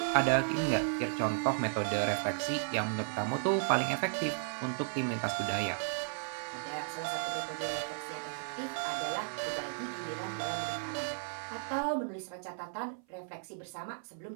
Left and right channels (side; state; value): left; silent; 55 dB below the other